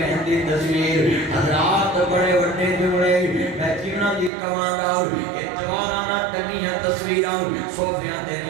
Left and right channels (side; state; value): left; drops out; at 4.3 s